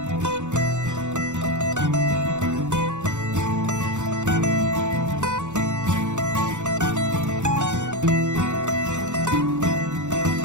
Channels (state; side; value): late; left; 0.85 ms